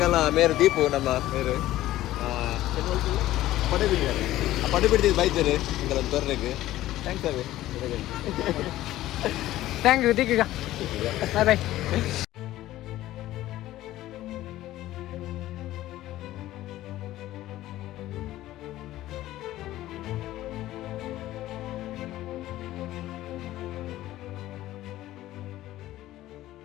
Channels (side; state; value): right; quieter; 15.0 dB